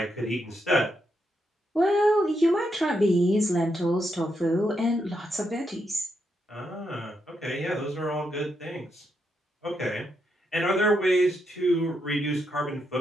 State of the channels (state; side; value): normal; both; correlation 0.81